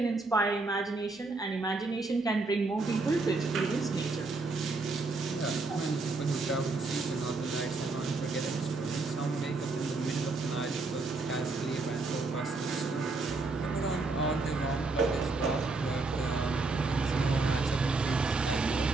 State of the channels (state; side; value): quieter; left; 3.6 dB